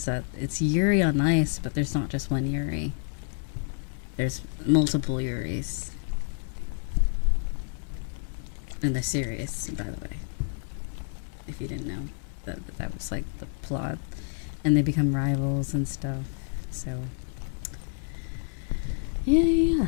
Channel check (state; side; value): silent; right; digital silence